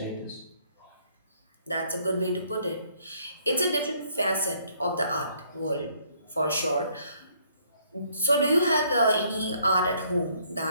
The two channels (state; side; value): inverted; both; correlation -0.66